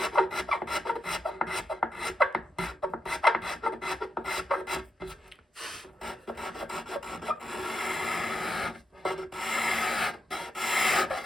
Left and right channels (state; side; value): normal; both; correlation 0.85